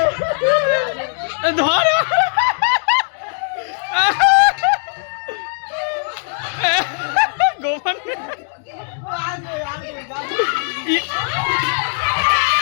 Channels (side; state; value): right; silent; digital silence